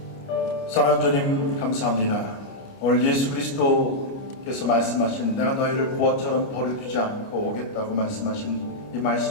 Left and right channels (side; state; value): right; late; 29 ms